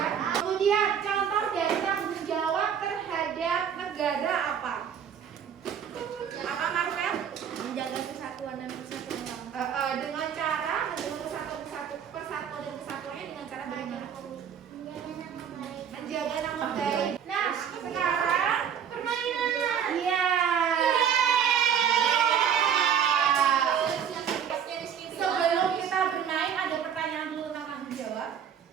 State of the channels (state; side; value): quieter; left; 8.3 dB